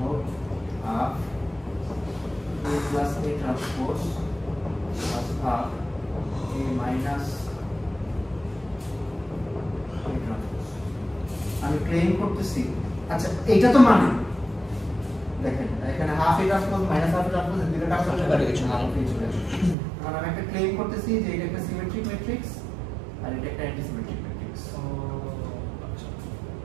half a plus a transpose plus half a minus a transpose. আমি ক্লেম করতেছি, আচ্ছা এটা তো মানে দেখেন এখানে half a transpose minus half a transpose এর দুটো কাজ করতে পারে কিছু না, কারণ আমি একটা ক্লেম করতেছি যে এটা একটা সিমেট্রিক ম্যাট্রিক্স আর এটা একটা antisymmetric matrix.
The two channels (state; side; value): drops out; left; at 19.8 s